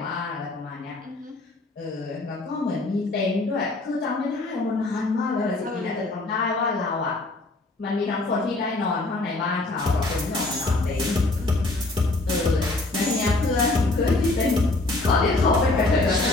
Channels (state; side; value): quieter; right; 3.0 dB